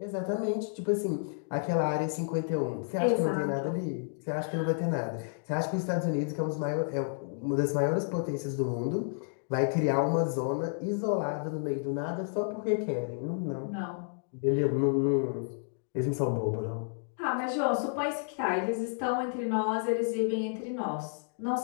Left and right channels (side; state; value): right; silent; digital silence